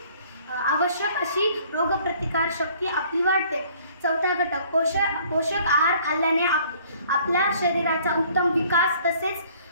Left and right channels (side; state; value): both; inverted; correlation -0.57